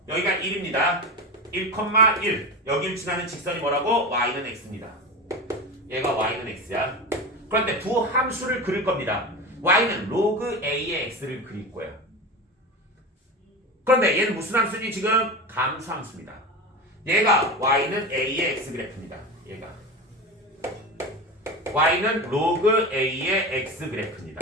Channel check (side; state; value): both; normal; correlation 0.25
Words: 여기가 1입니다. 1,1 여기를 지나는 직선이 뭐라고? y는 x입니다. 얘가 y는 x야. 그런데 부함수를 그릴 겁니다. y는 로그 a의 x를 그릴 거야. 그런데 얘는 무슨 함수니 지금? 감수함수입니다. 얘가 y는 a의 x 그래프입니다. 얘가 y는 로그 a의 x 그래프입니다.